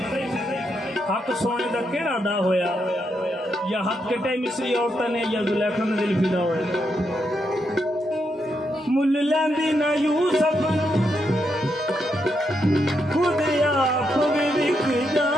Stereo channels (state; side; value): normal; both; correlation 0.81